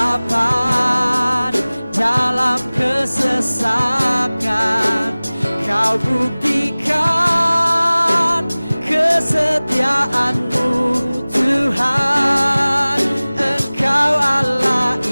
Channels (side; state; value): both; inverted; correlation -0.99